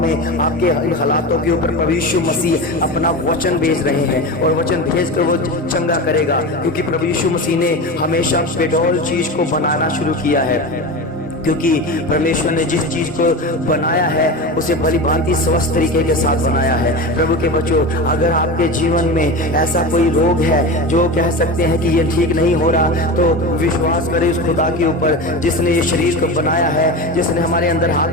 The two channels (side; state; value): both; normal; correlation 0.25